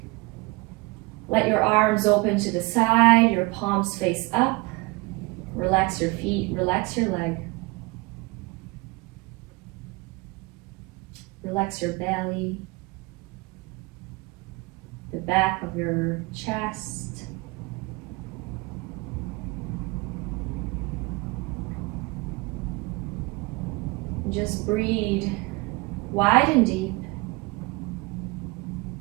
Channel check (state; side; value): quieter; left; 24.8 dB